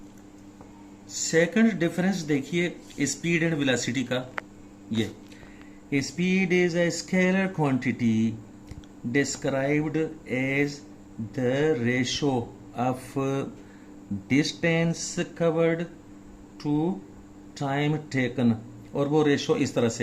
सेकंड डिफरेंस देखिए स्पीड एंड वेलोसिटी का। ये speed is a scalar quantity described as the ratio of distance covered to time taken, और वो रेशो इस तरह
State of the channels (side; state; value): both; identical; correlation 1.00